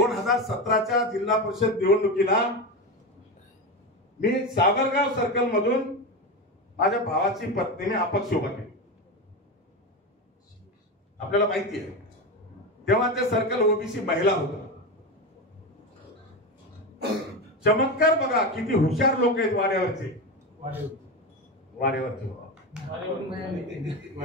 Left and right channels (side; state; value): both; normal; correlation 0.18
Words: जिल्हा परिषद निवडणुकीला मी सावरगाव सर्कल मधून माझ्या भावाची पत्नीने अपक्ष उभा केली. आपल्याला माहिती आहे तेव्हा ते सर्कल ओबीसी महिला होता. चमत्कार बघा किती हुशार लोक आहेत वाड्यावरचे.